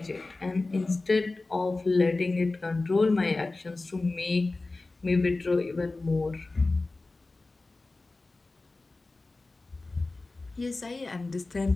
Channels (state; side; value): quieter; right; 3.3 dB